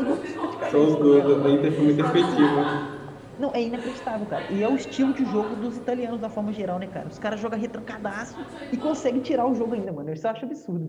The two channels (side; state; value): both; identical; correlation 1.00